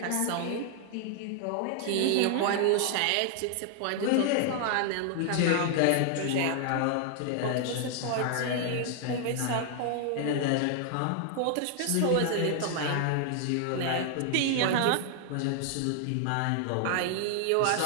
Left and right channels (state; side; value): different; both; correlation 0.00